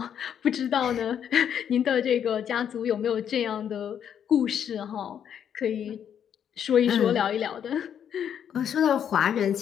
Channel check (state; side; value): quieter; right; 8.8 dB